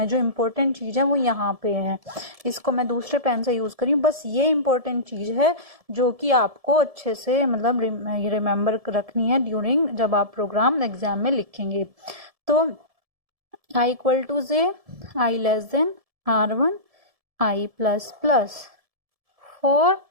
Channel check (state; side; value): late; left; 1.7 ms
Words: जो इम्पोर्टेंट चीज है वो यहाँ पे है। इसको मैं दूसरे पेन से यूज करी हूँ, बस ये इम्पोर्टेंट चीज है जो कि आपको अच्छे से मतलब रिमेम्बर रखनी है ड्यूरिंग जब आप प्रोग्राम एग्जाम में लिखेंगे। तो I equal to J, I less than R1, I plus plus 4,